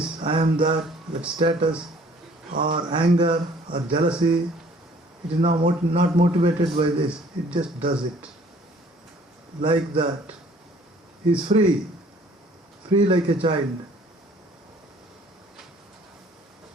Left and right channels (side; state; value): both; normal; correlation 0.56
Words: I am that status, or anger, or jealousy. It is not motivated by this. It just does it. Like that. He is free like a child.